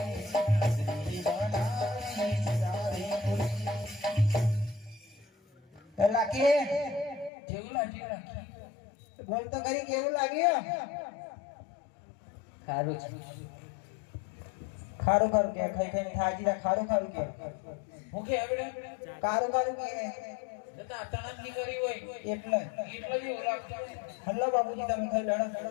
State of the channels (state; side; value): drops out; right; at 7.3 s